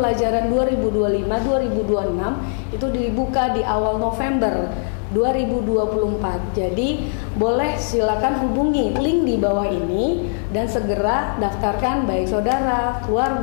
2025-2026, itu dibuka di awal November 2024. Jadi boleh silakan hubungi link di bawah ini dan segera daftarkan baik saudara,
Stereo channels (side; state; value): right; silent; digital silence